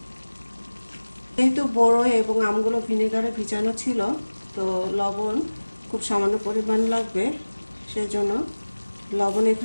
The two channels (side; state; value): both; inverted; correlation -1.00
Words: যেহেতু বড়ই এবং আমগুলো ভিনেগারে ভিজানো ছিল, তো লবণ খুব সামান্য পরিমাণ লাগবে, সেজন্য লবণ